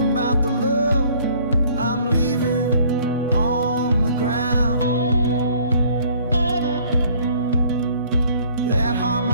about the love I'm leaving on the ground. That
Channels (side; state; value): both; inverted; correlation -0.57